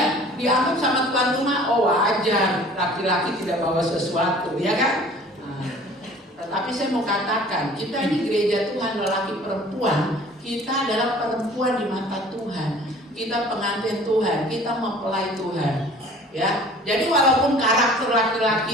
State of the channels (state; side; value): normal; both; correlation 0.48